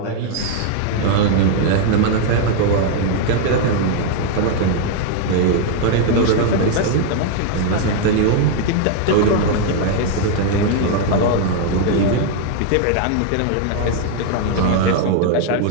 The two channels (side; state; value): both; different; correlation 0.00